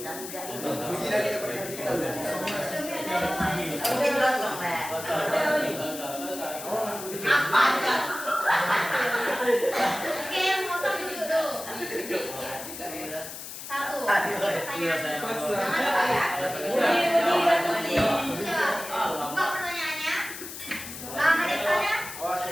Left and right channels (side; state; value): left; noise; hiss, 10 dB below the sound